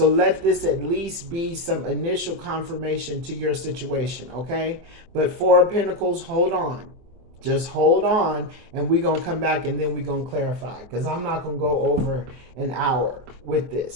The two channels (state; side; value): late; left; 24 ms